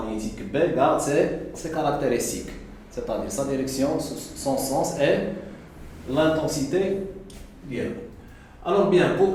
B garde ses caractéristiques, c'est-à-dire sa direction, son sens et l'intensité. Bien. Alors bien,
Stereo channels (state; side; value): identical; both; correlation 1.00